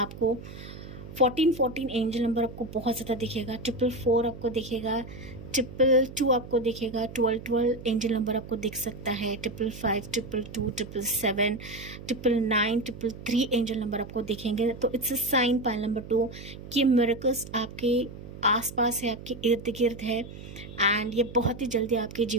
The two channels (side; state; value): right; noise; hum, 13 dB below the sound